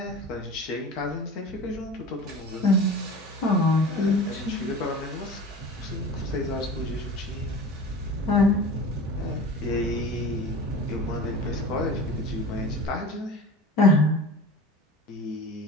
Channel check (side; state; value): both; normal; correlation 0.35